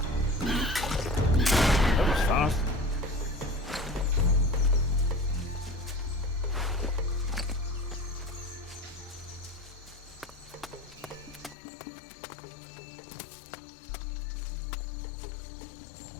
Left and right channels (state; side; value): drops out; right; at 11.6 s